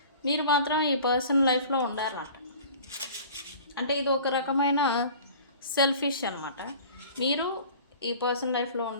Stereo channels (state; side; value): inverted; both; correlation -0.44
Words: మీరు మాత్రం ఈ పర్సన్ లైఫ్లో ఉండాలన్నమాట. అంటే ఇది ఒక రకమైన సెల్ఫిష్ అనమాట. మీరు ఈ పర్సన్ లైఫ్లో